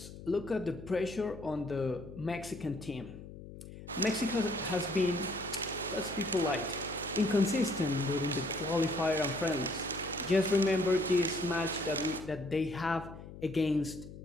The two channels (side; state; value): left; noise; hum, 14 dB below the sound